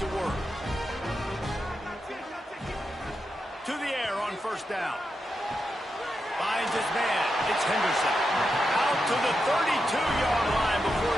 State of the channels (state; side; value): normal; both; correlation 0.87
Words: work. To the air on first down. Finds his man. It's Henderson. Out to the 32-yard line before